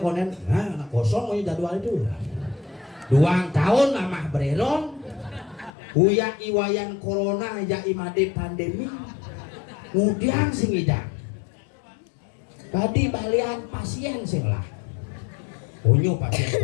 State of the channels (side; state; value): right; drops out; at 5.7 s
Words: nah kosong mau jadwal itu 2 tahun amah bereron uya iwayan corona ya imade pandemi kemudian sing hidang tadi balian pasien sing lah onyo pasien